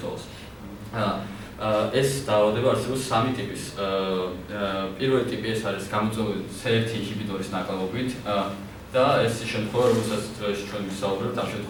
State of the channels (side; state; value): both; identical; correlation 1.00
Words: ეს დაავადება არსებობს სამი ტიპის. პირველი ტიპი ეს არის გამოწვეული C1 ინჰიბიტორის ნაკლებობით და ეს შემთხვევა, რომელსაც დღეს ჩვენ ვისაუბრებთ ამ